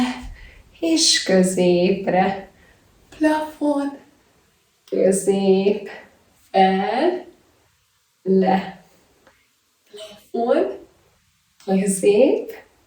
és középre. Plafon, közép, fel, le. Plafon, közép,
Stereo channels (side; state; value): both; identical; correlation 1.00